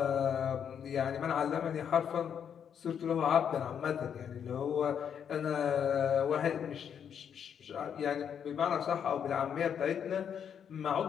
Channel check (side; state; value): right; quieter; 8.1 dB